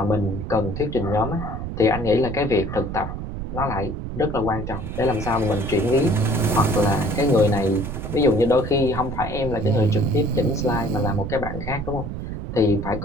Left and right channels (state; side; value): noise; right; rumble, 6 dB below the sound